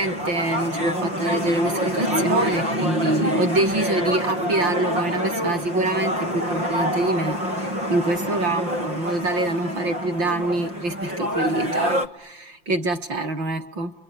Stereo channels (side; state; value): left; late; 5.7 ms